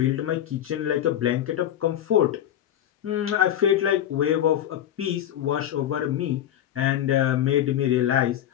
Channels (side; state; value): right; quieter; 11.0 dB